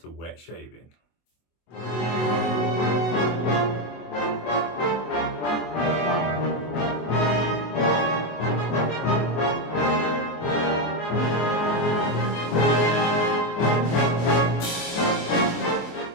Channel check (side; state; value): right; late; 24 ms